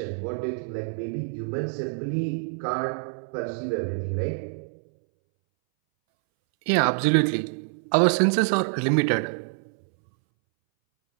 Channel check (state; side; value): silent; left; 61 dB below the other